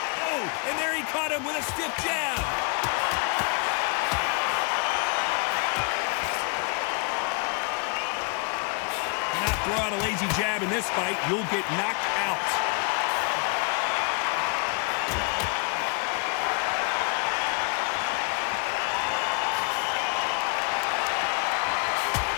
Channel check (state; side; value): quieter; right; 35.7 dB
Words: Oh, and there he caught him with a stiff jab. Throw out a lazy jab in this fight, you'll get knocked out.